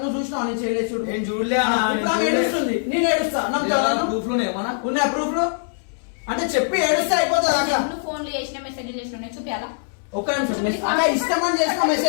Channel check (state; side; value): silent; right; 62 dB below the other